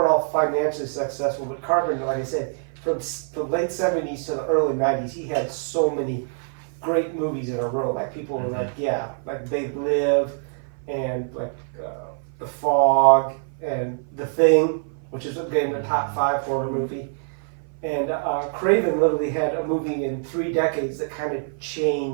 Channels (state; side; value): silent; left; 56 dB below the other